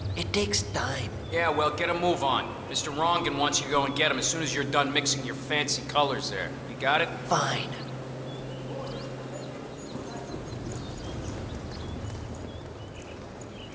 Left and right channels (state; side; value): identical; both; correlation 1.00